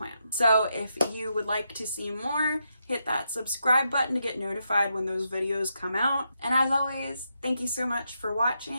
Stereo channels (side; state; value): both; inverted; correlation -0.83